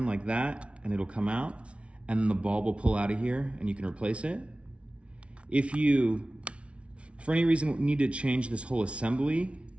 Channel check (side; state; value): left; late; 0.061 ms